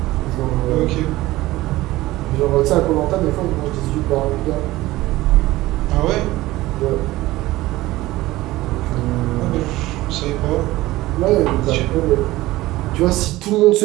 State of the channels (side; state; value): left; quieter; 17.8 dB